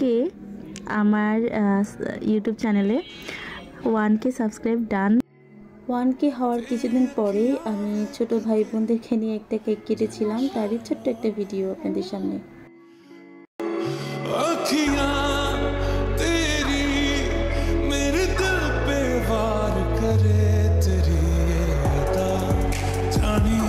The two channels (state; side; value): identical; both; correlation 1.00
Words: আমার ইউটিউব চ্যানেলে 1K সাবস্ক্রাইব ডান। 1K হওয়ার কিছুদিন পরে আমি ছোট ভাই বোনদেরকে নিয়ে একটা কেক কেটেছিলাম, তারই ছোট্ট একটা ভিডিও আপনাদের সামনে।